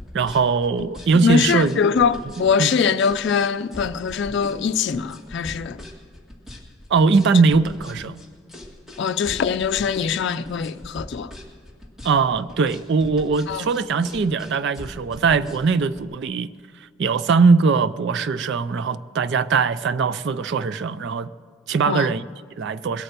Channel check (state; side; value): normal; both; correlation 0.37